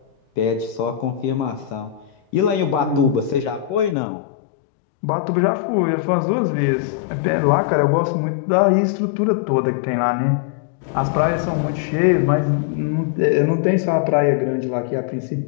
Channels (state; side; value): drops out; right; at 4.0 s